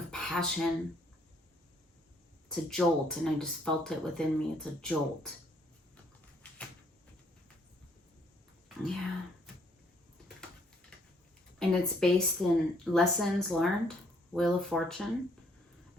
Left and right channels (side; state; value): both; normal; correlation 0.66